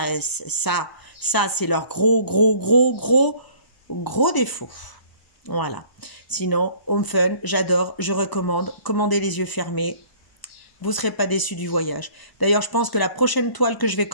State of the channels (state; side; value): late; right; 1.0 ms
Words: leur gros défaut. Voilà. Sinon, Home Fun, j'adore, je recommande. Commandez les yeux fermés. Vous ne serez pas déçus du voyage. D'ailleurs, je pense que la prochaine toile que je vais